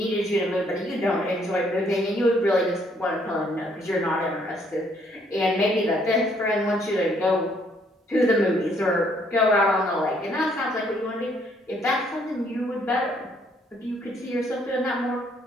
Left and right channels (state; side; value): normal; both; correlation 0.67